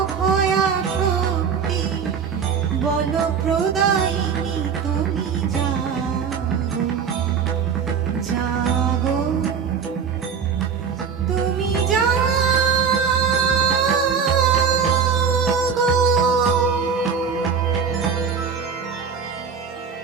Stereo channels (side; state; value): left; quieter; 6.5 dB